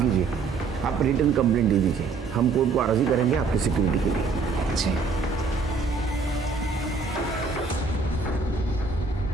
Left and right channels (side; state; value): left; quieter; 4.5 dB